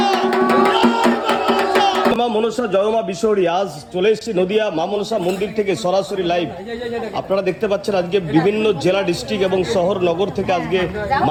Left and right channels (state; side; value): identical; both; correlation 1.00